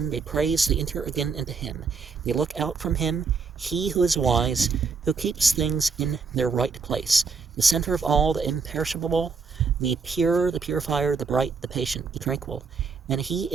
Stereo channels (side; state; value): left; quieter; 5.1 dB